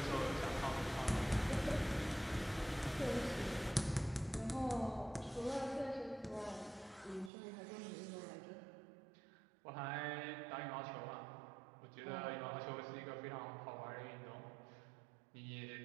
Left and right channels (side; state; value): left; drops out; at 7.3 s